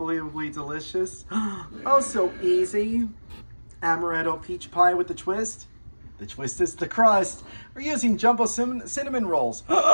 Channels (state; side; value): inverted; both; correlation -1.00